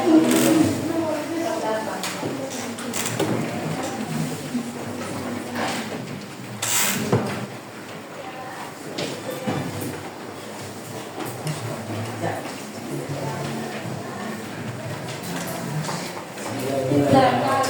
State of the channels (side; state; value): both; identical; correlation 1.00